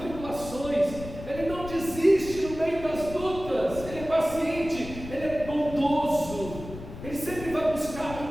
ele não desiste no meio das lutas, ele é paciente, ele é bondoso, ele sempre vai buscar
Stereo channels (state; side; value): noise; left; rumble, 12 dB below the sound